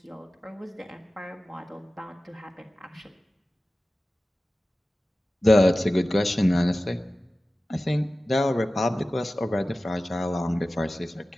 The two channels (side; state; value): both; normal; correlation 0.96